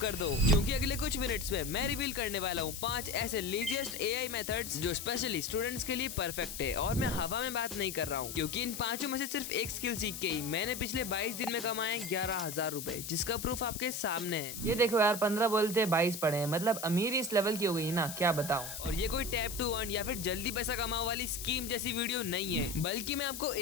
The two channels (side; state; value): left; noise; hiss, 8 dB below the sound